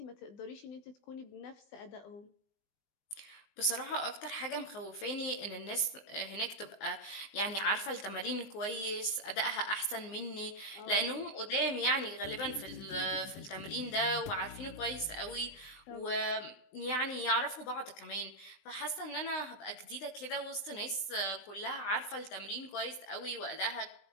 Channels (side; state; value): right; late; 20 ms